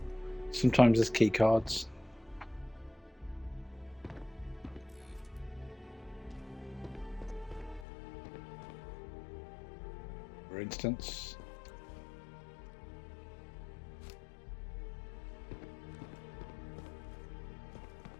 sometimes there's key cards. For instance.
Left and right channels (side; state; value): right; drops out; at 7.9 s